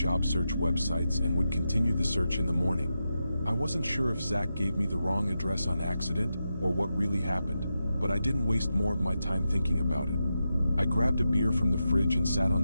search websites and would continue the search in the morning. I wasn't sure if Zach gave me the wrong address on accident or what really happened, but I didn't waste more of my time thinking about it. I grabbed a beer from the fridge and sat on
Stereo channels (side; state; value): both; inverted; correlation -0.88